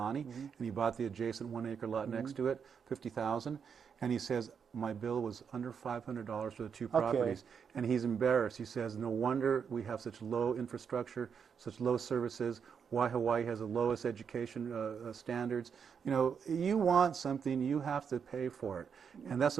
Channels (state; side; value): quieter; left; 6.8 dB